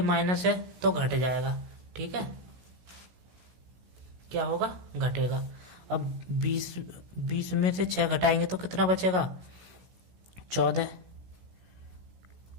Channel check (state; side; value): late; left; 16 ms